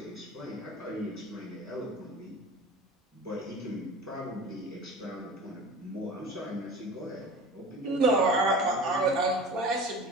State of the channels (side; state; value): both; normal; correlation 0.37